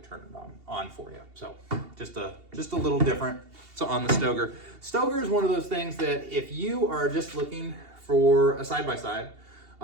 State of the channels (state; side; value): late; left; 2.8 ms